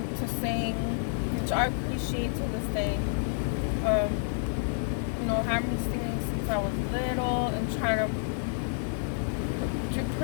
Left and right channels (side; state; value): right; silent; digital silence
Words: to sing, which I appreciate to this day. Having me singing since I was little and trying to